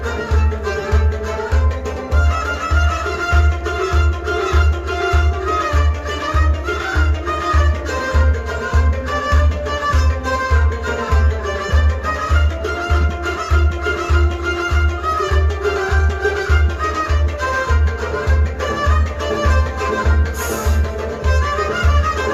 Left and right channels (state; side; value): identical; both; correlation 1.00